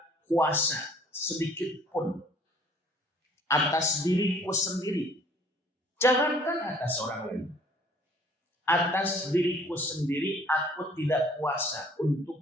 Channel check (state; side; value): normal; both; correlation 0.56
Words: kuasa sedikit pun atas diriku sendiri. Jangankan atas orang lain. Atas diriku sendiri aku tidak kuasa